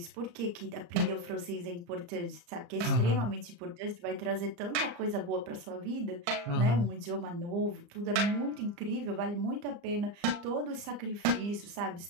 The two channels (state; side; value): late; left; 34 ms